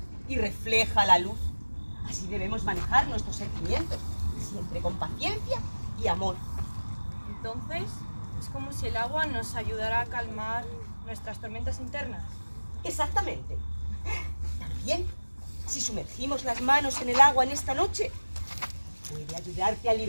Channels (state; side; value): inverted; both; correlation -1.00